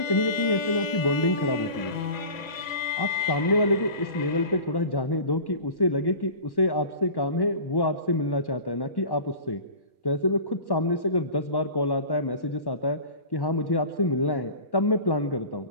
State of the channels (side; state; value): right; late; 1.2 ms